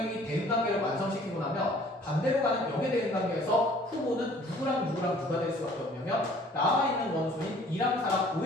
대응 관계를 완성시키고 나면 반대로 가는 역의 대응관계에서 후보는 누구랑 누가 될 수밖에 없냐면 남아있는 원소인 2랑 4랑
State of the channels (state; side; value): normal; both; correlation 0.54